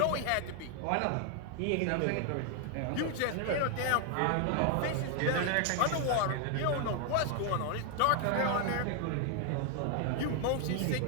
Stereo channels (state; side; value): different; both; correlation 0.00